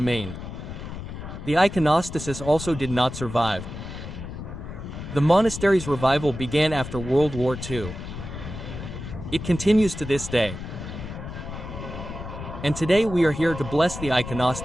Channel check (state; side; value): noise; left; rumble, 9 dB below the sound